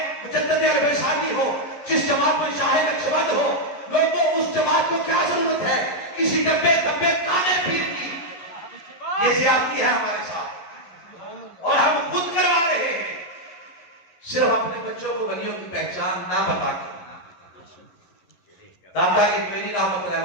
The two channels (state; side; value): late; right; 11 ms